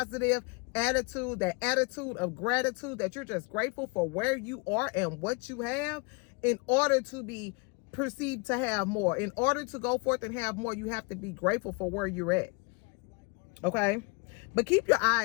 attitude, that attitude of gratitude, that you're just grateful for where you are and what you have, in order to be perceived to have more. In order to go forth and have more, you have to be grateful for where you're at. Okay? But keep your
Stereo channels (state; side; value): quieter; right; 30.6 dB